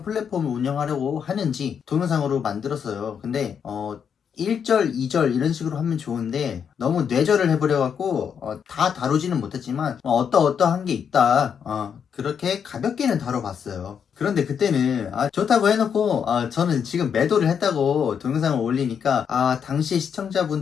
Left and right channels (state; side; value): quieter; right; 7.4 dB